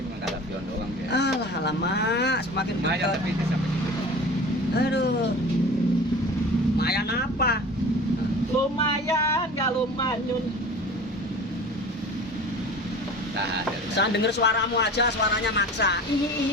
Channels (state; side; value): normal; both; correlation 0.39